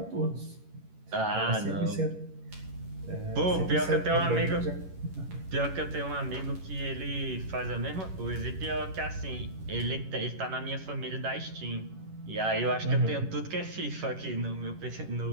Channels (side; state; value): left; late; 11 ms